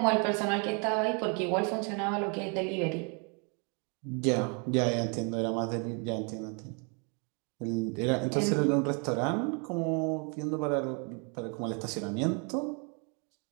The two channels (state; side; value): quieter; left; 36.0 dB